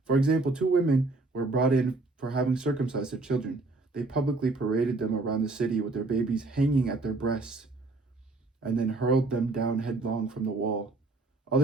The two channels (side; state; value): left; quieter; 3.4 dB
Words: For example, 2 women were brought in for having circumcised their children. They publicly paraded them around the city with their babies hanging at their breasts, and then hurled them down headlong from the wall.